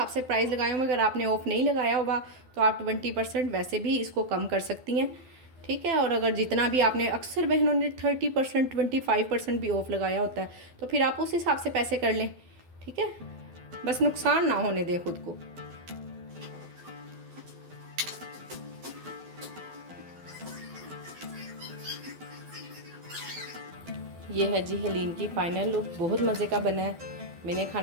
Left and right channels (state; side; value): late; left; 12 ms